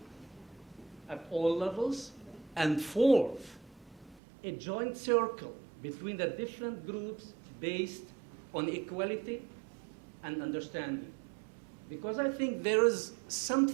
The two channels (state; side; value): drops out; left; at 4.2 s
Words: at all levels. And fourth, a joint circle between the different groups based on equality and understanding. Because I think there is